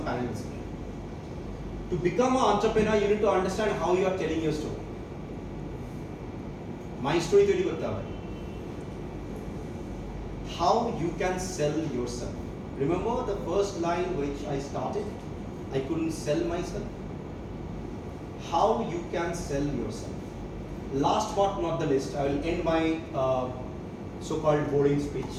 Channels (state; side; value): identical; both; correlation 1.00